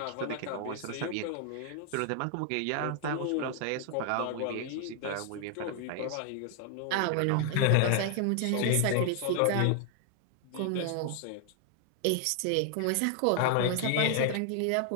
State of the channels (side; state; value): both; different; correlation 0.00